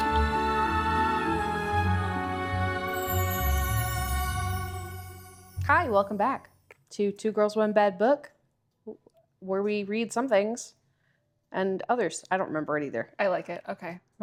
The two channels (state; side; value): identical; both; correlation 1.00